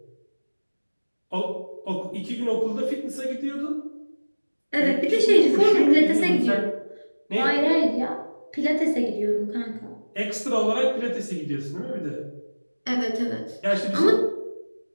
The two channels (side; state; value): both; inverted; correlation -1.00